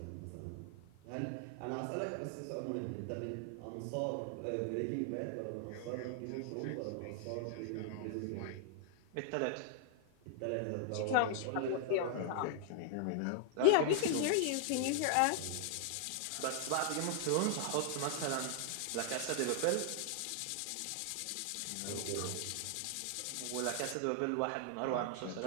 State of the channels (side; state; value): both; different; correlation 0.00